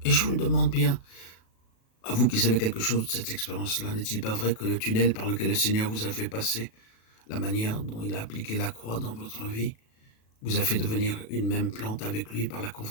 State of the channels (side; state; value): right; late; 37 ms